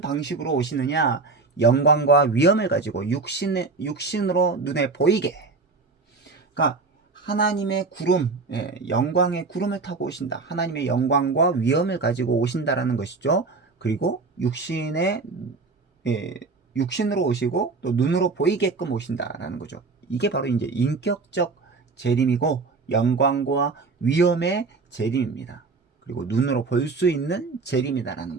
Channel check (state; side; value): quieter; left; 4.1 dB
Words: 오시느냐? 영광과 위엄을 가지고 육신으로 눈에 보이게. 그러니까 하나님의 구름, 영광의 구름을 타고 오신다. 하나님의 영광과 위엄을 가지고 오신다라는 것이죠. 그리고 육신으로 오시고 또 눈으로 보이게끔 오신다라는 거죠. 이게 바로 이제 인격적 재림이고 영광과 위엄의 재림입니다. 그리고 눈으로 볼 수 있는 재림이다라는